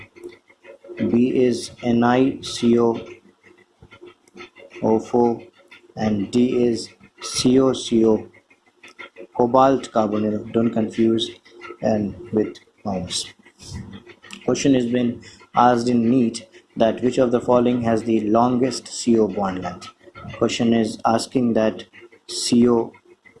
B is NiCO O4, and D is COCO cobalt carbonyl. Don't confuse and with minus. Question has been asked in NEET that which of the following has the longest CO bond length. Question is asking that CO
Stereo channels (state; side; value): identical; both; correlation 1.00